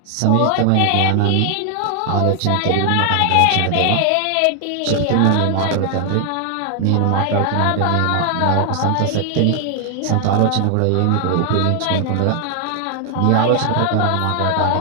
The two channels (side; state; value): both; different; correlation 0.00